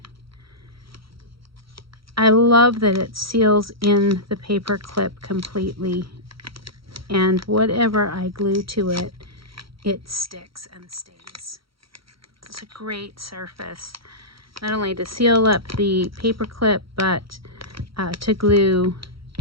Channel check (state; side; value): late; left; 0.75 ms